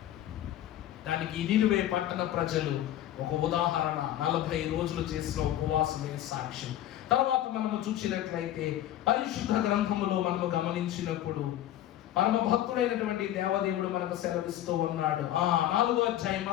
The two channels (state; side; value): quieter; right; 12.7 dB